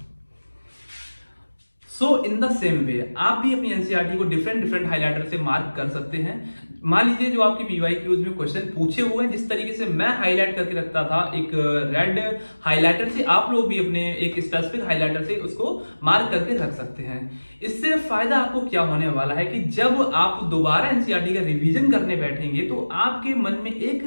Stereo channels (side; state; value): both; inverted; correlation -1.00